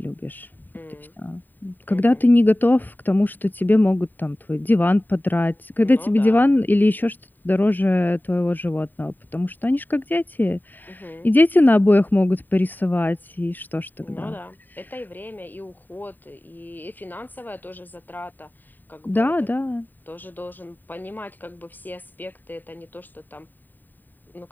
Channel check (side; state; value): right; late; 0.090 ms